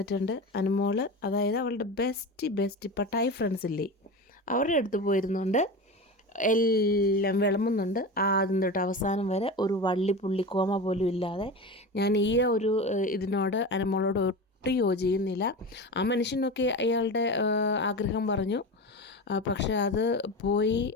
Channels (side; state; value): both; normal; correlation 0.27